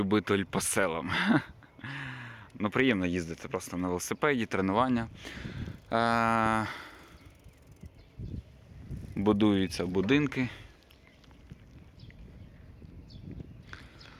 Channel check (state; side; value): identical; both; correlation 1.00